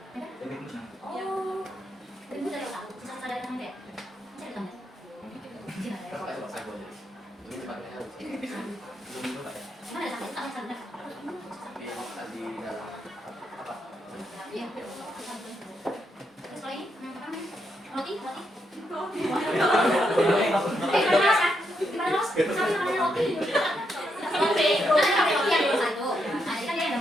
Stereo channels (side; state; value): both; normal; correlation 0.80